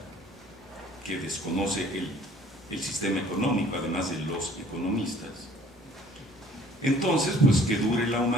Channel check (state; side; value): normal; both; correlation 0.55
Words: que desconoce el sistema económico, además de los economistas. Entonces, pues que dure la